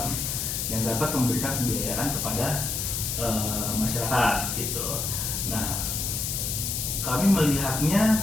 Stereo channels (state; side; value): noise; left; hiss, 2 dB below the sound